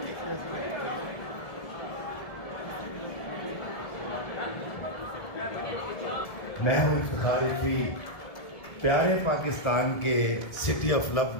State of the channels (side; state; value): right; late; 1.7 ms